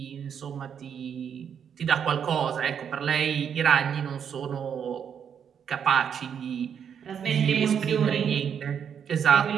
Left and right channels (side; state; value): left; quieter; 7.9 dB